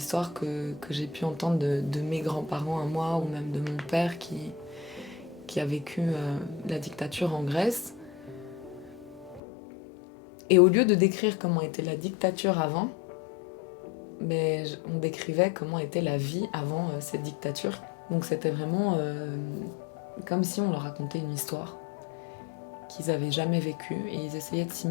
que j'ai pu entendre de mes grands-parents à moi, ou même de mon père qui a vécu la dictature en Grèce. Et au lieu de décrire comment était la dictature avant, mais on décrivait comment était la vie avant cette dictature. Donc c'était vraiment comme si on leur racontait une histoire qu'ils n'avaient jamais vécue, et ils essayaient de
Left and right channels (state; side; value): drops out; right; at 9.4 s